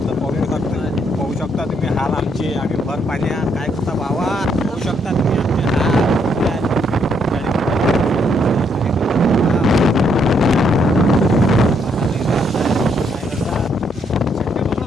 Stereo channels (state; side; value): normal; both; correlation 0.73